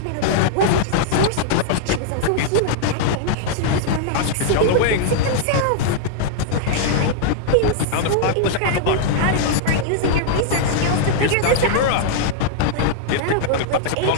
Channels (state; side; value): different; both; correlation -0.01